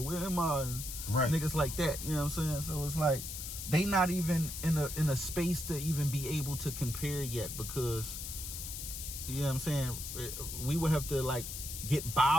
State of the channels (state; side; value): noise; left; hiss, 7 dB below the sound